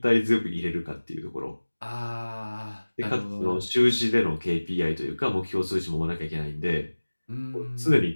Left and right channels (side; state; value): both; inverted; correlation -1.00